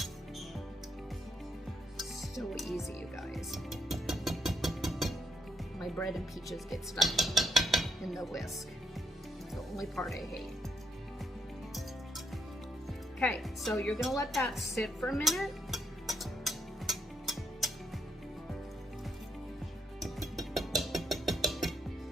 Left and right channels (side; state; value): both; normal; correlation 0.75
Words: So easy, you guys. My bread and peaches get stuck in the whisk. It's the only part I hate. Okay, so you're gonna let that sit for a minute.